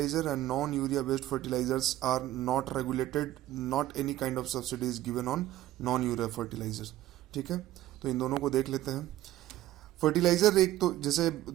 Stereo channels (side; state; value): left; quieter; 14.6 dB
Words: and non urea based fertilizers are not regulated, not any kind of subsidy is given on non urea fertilizer। ठीक है, तो इन दोनों को देख लेते हैं। फर्टिलाइजर एक तो जैसे